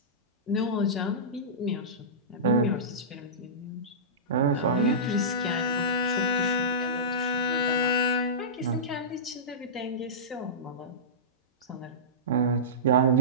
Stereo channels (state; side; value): normal; both; correlation -0.18